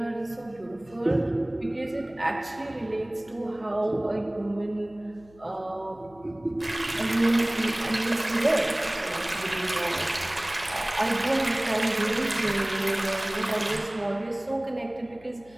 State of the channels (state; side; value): noise; left; hum, 26 dB below the sound